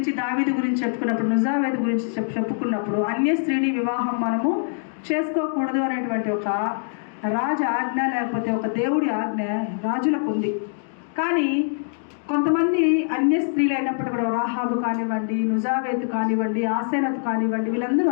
దావీదు గురించి చెప్పుకున్నప్పుడు, నుజావేదు గురించి చెప్పుకున్నప్పుడు అన్య స్త్రీని వివాహం మనము చేసుకోకూడదు అనేటువంటి ఒక రాజు ఆజ్ఞ లేకపోతే ఒక దేవుడి ఆజ్ఞ రాజులకు ఉంది. కానీ కొంతమంది అన్య స్త్రీలు అయినప్పుడు కూడా రాహాబు కానివ్వండి, నుజావేతు కానివ్వండి, ఆసేనతు కానివ్వండి, వీళ్ళందరూ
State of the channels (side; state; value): right; silent; digital silence